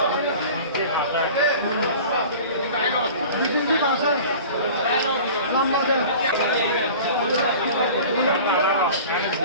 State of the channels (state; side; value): inverted; both; correlation -0.40